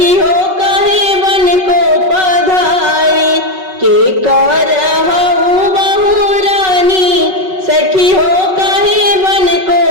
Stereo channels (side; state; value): left; late; 5.3 ms